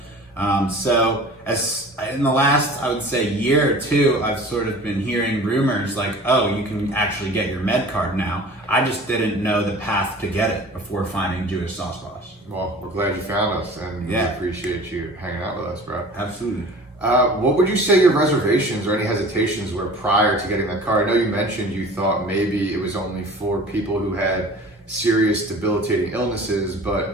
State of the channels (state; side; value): normal; both; correlation 0.43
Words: So as in the last, I would say, year or two, I've sort of been hearing rumors like, oh, you can actually get your med card now. I just didn't know the path to get it before finding Jewish Sauce Boss. Well, we're glad you found us, and we appreciate you hanging out with us, bro. Absolutely. What would you say your reservations or any hesitations were prior to getting that card? I know you mentioned you thought maybe it was only for people who had serious debilitating illnesses, but